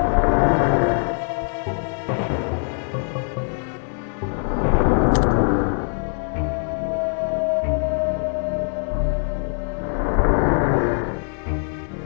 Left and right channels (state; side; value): silent; right; 64 dB below the other